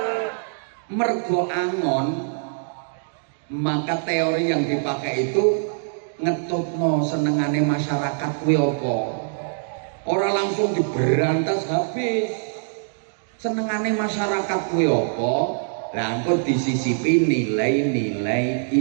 Mergo angon, maka teori yang dipakai itu ngetutno senengane masyarakat kuwi apa? Ora langsung diberantas habis. Senengane masyarakat kuwi apa? Lah engko disisipi nilai-nilai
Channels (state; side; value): silent; left; digital silence